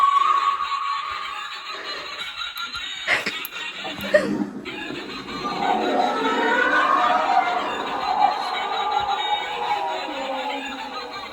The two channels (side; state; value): both; identical; correlation 1.00